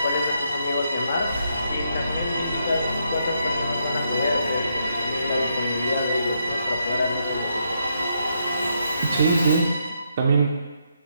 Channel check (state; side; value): inverted; both; correlation -0.78